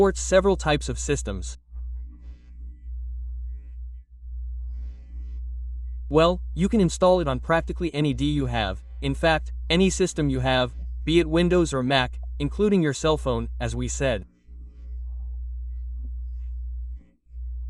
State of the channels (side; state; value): both; identical; correlation 1.00